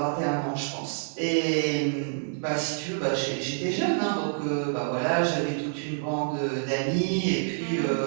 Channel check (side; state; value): left; silent; 56 dB below the other